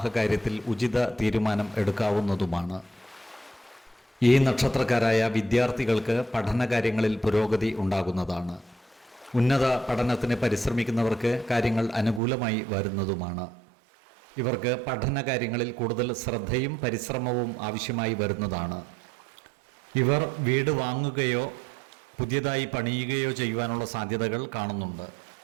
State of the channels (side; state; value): left; drops out; at 12.2 s